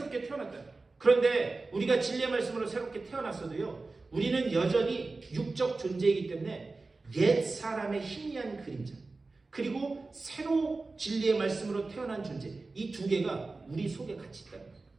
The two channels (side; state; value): left; quieter; 3.6 dB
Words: 태어났다. 그런데 우리가 진리의 말씀으로 새롭게 태어났어도요, 우리는 여전히 육적 존재이기 때문에 옛 사람의 희미한 그림자, 그리고 새로 진리의 말씀으로 태어난 존재, 이 두 개가 우리 속에 같이 있다.